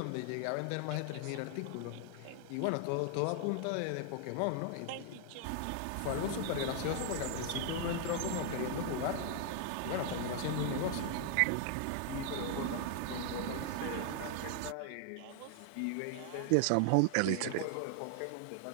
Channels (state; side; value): different; both; correlation 0.00